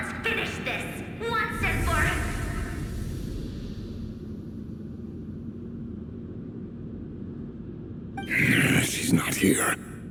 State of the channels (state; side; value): identical; both; correlation 1.00